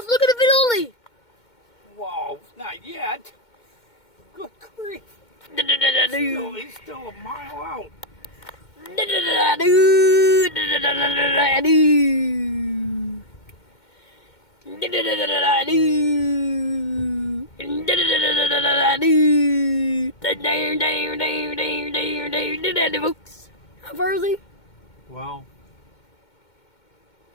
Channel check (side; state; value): right; late; 2.2 ms